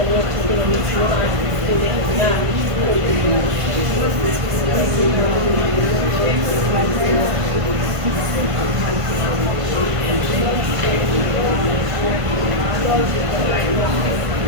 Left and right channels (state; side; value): late; left; 1.5 ms